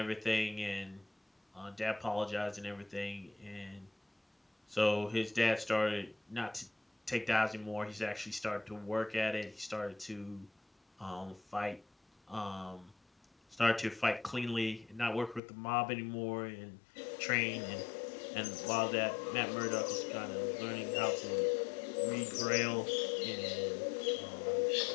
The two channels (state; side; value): drops out; right; at 15.4 s